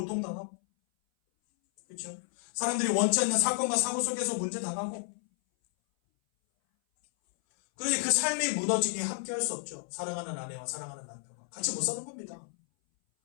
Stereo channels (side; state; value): right; silent; 57 dB below the other